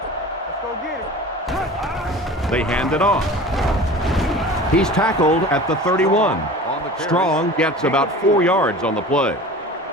They hand it off. He's tackled at the 31. Strong gets about 4 yards on the play.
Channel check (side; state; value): both; normal; correlation 0.39